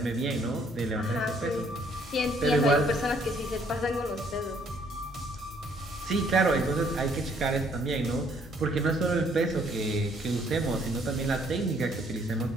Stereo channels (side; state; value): both; normal; correlation 0.65